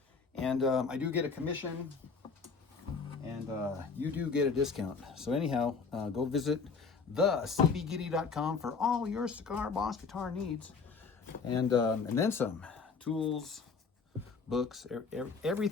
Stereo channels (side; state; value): right; quieter; 4.9 dB